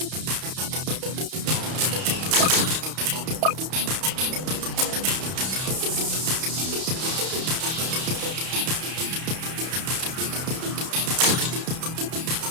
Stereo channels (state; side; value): late; left; 31 ms